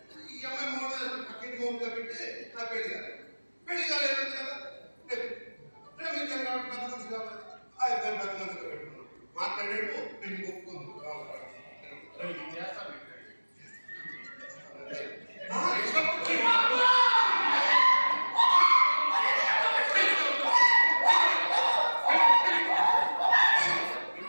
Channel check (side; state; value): both; inverted; correlation -1.00